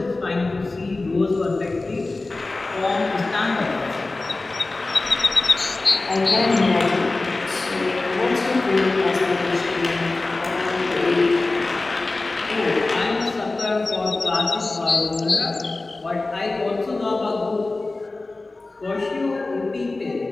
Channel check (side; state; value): right; quieter; 3.3 dB